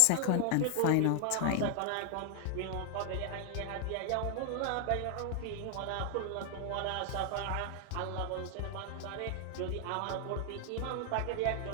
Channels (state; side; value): different; both; correlation 0.00